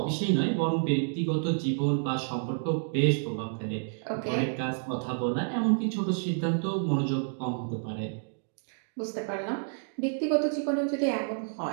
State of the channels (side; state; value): left; silent; digital silence